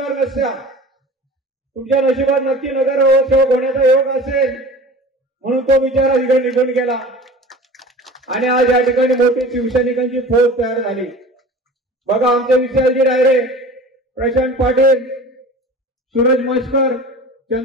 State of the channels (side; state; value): both; normal; correlation 0.39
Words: नसत्या. तुमच्या नशिबात नक्की नगरसेवक होण्याचा योग असेल म्हणून तो बिचारा तिकडे निघून गेला आणि आज या ठिकाणी मोठी शिवसैनिकांची फौज तयार झाली. बघा आमचे विशालजी रायरे, प्रशांत पाटील, सूरज मस्कर,